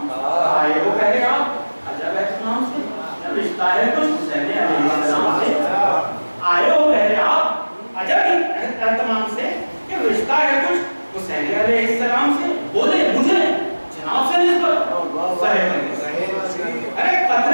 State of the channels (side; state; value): both; inverted; correlation -1.00